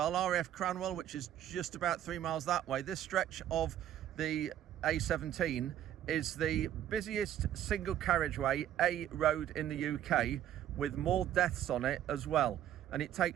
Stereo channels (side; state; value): left; quieter; 11.3 dB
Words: RAF Cranwell, which is just about 3 miles that way. This stretch of the A17 is the busiest single carriageway A road in the UK, with more deaths on it as well. And it